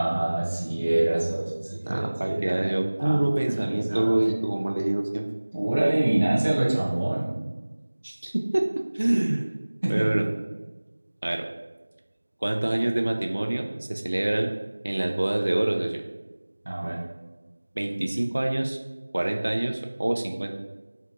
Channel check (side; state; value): both; inverted; correlation -1.00